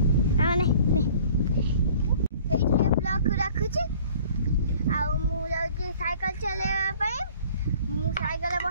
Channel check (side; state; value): both; inverted; correlation -0.51